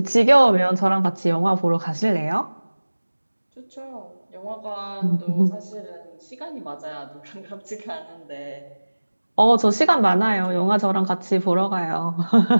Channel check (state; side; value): inverted; both; correlation -1.00